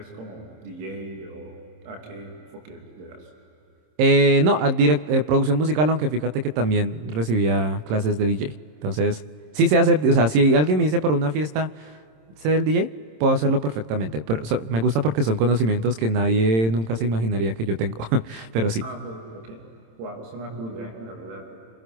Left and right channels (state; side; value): late; left; 27 ms